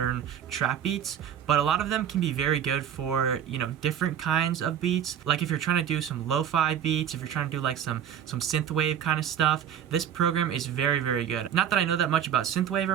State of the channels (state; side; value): quieter; left; 9.3 dB